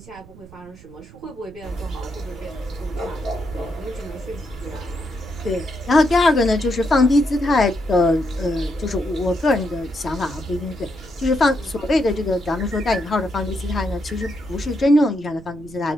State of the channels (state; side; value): noise; right; rumble, 20 dB below the sound